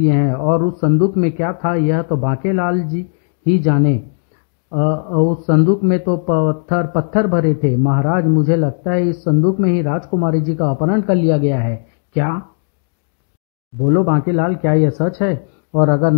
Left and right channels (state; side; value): silent; right; 60 dB below the other